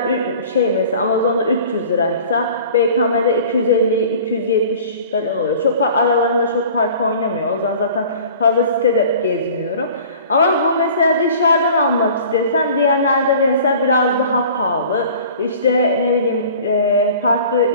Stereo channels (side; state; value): both; inverted; correlation -0.46